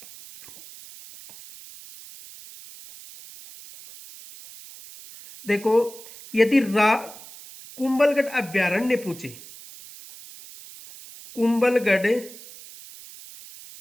देखो यदि कुंभलगढ़ अभ्यारण्य पूछे, कुंभलगढ़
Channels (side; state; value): right; noise; hiss, 18 dB below the sound